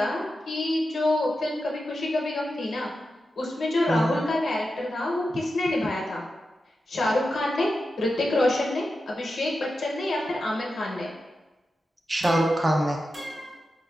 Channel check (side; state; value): both; normal; correlation 0.90